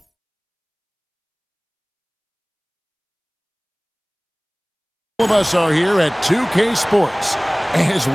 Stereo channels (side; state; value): both; identical; correlation 1.00